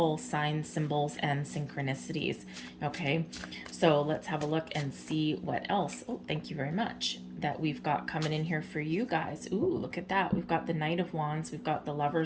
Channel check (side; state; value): both; identical; correlation 1.00